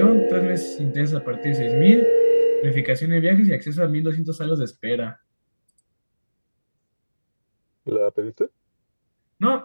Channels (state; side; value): inverted; both; correlation -1.00